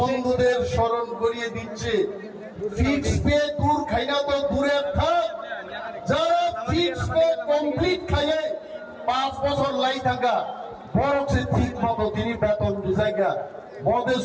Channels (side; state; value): both; identical; correlation 1.00